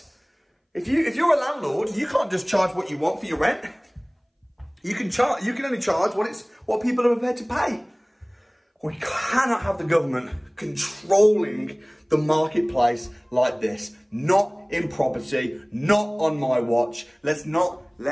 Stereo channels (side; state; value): both; identical; correlation 1.00